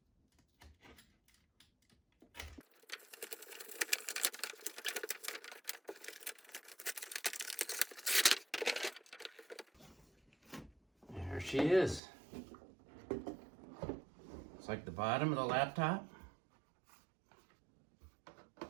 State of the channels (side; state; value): left; drops out; at 12.0 s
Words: There she is. It's like the bottom of the laptop.